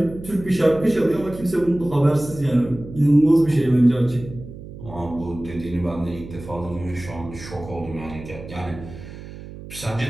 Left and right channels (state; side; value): noise; right; hum, 14 dB below the sound